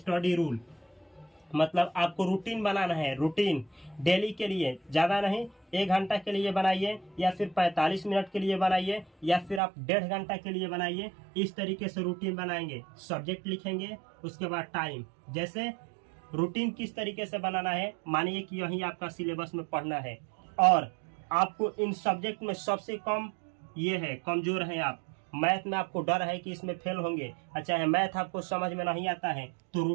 रूल, मतलब आपको रूटीन बनाना है। रूटीन डेली के लिए, ज़्यादा नहीं, 1 घंटा के लिए बनाइए या फिर 45 मिनट के लिए बनाइए या फिर आप 1.5 घंटा के लिए बनाइए। इस तरीके से रूटीन बनाएंगे, सब्जेक्ट लिखेंगे, उसके बाद टाइम। जैसे रूटीन किस तरीके से बनाना है, मानिए कि यही आपका सिलेबस में पढ़ना है और आपको इन सब्जेक्ट में सबसे कम ये है, कमजोर हैं आप। मैथ में आपको डर है कि इसमें फेल होंगे, अच्छा है मैथ आपको समझ में नहीं आता है, तो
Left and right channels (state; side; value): drops out; left; at 9.6 s